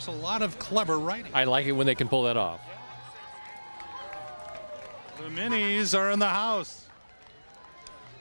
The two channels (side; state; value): both; inverted; correlation -1.00